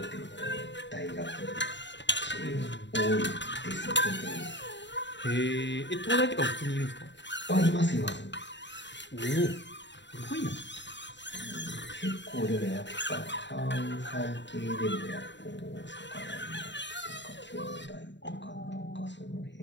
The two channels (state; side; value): late; right; 0.52 ms